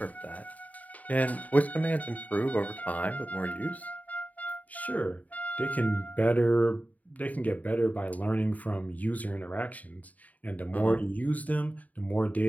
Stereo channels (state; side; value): late; right; 0.073 ms